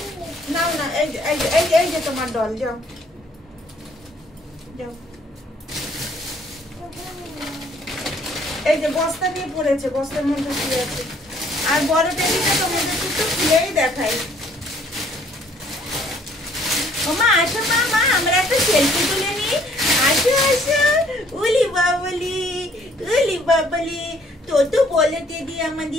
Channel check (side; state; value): both; normal; correlation 0.61